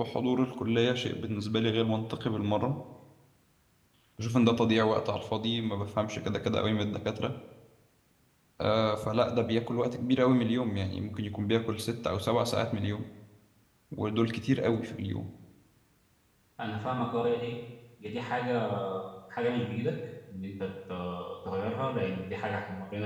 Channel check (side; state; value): both; identical; correlation 1.00